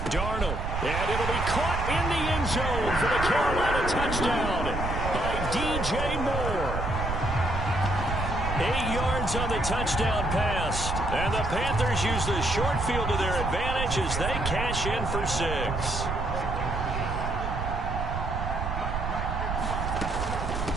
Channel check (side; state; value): right; noise; rumble, 3 dB below the sound